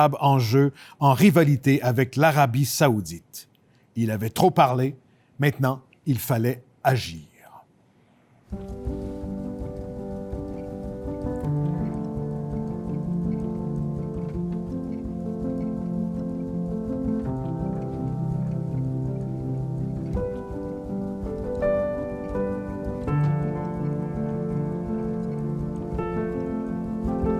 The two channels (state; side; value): identical; both; correlation 1.00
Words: en jeu en rivalité avec l'Arabie saoudite. Il avait trop parlé, maintenant il fallait agir.